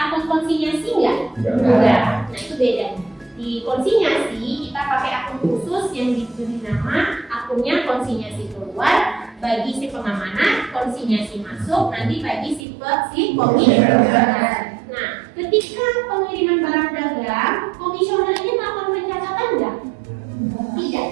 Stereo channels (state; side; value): drops out; left; at 12.6 s